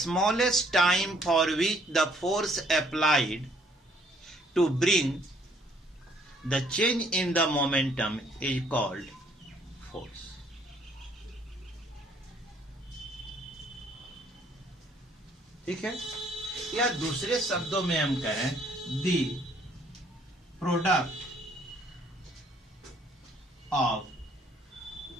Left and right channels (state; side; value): normal; both; correlation 0.63